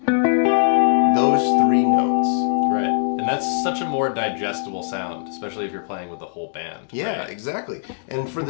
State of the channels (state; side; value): silent; right; digital silence